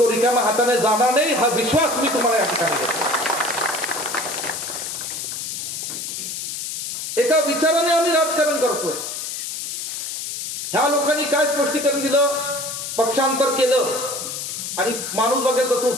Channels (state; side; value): noise; left; hiss, 5 dB below the sound